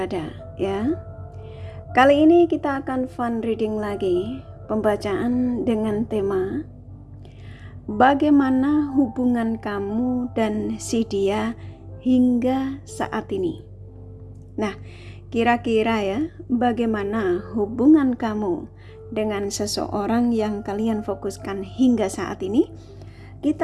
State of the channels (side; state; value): both; identical; correlation 1.00